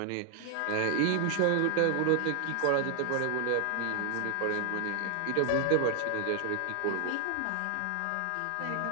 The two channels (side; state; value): both; different; correlation 0.00